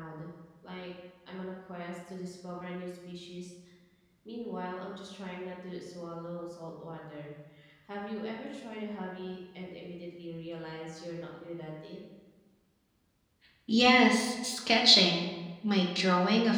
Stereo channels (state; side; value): identical; both; correlation 1.00